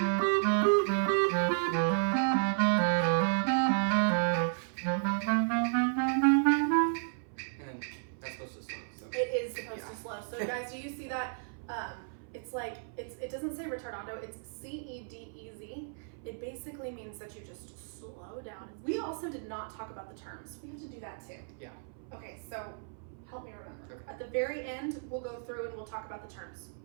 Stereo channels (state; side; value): silent; left; 55 dB below the other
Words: And that's supposed to stop, so. It is supposed to slow. So guys, do you see that? It's like, it doesn't say retardando, it's C-E-D-E-Z. It basically means that you just slow down. We also did not talk about the terms. We have to do that too. Yeah. Okay, so help me remember. Okay. At the very end, we'll go through and we'll talk about the terms.